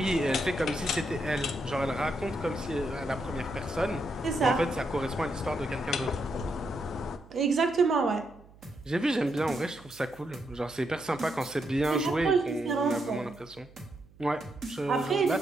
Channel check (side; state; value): right; noise; hum, 24 dB below the sound